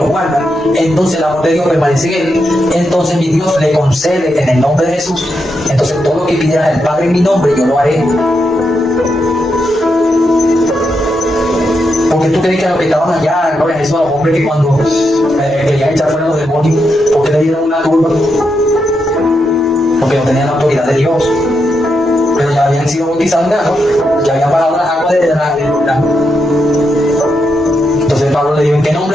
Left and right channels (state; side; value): normal; both; correlation 0.83